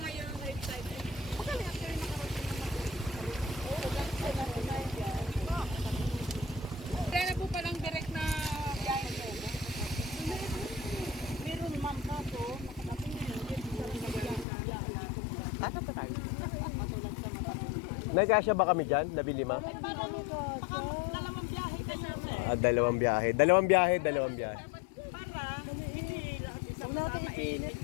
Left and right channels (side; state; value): right; drops out; at 14.5 s